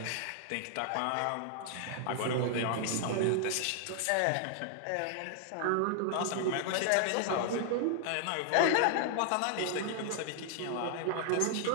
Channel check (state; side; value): different; both; correlation 0.00